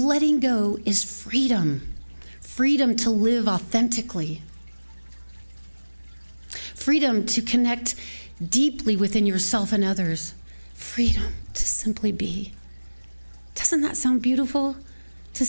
go is freedom. Freedom to live authentically. Freedom to connect deeply within yourself and others. Freedom to simply be. Doesn't that sound beautiful? To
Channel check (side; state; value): both; inverted; correlation -1.00